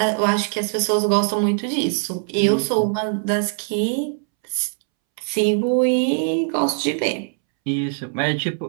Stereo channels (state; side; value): silent; left; 65 dB below the other